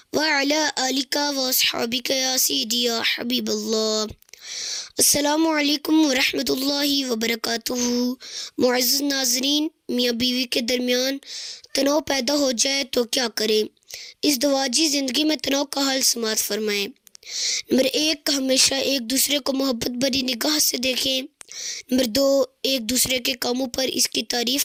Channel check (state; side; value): identical; both; correlation 1.00